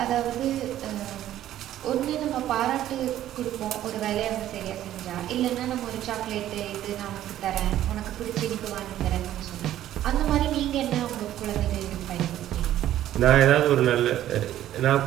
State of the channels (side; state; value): left; quieter; 12.6 dB